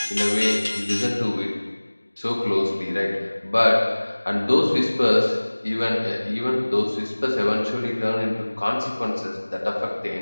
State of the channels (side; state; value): both; inverted; correlation -1.00